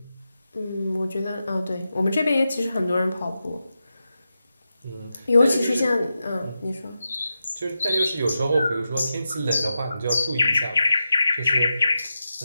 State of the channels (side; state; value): both; inverted; correlation -0.90